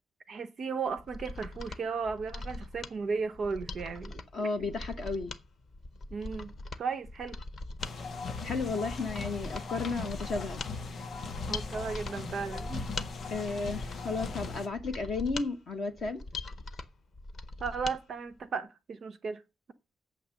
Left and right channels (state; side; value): normal; both; correlation 0.72